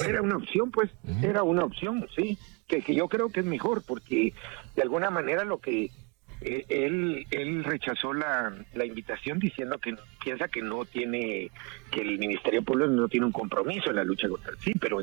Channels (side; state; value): left; quieter; 30.4 dB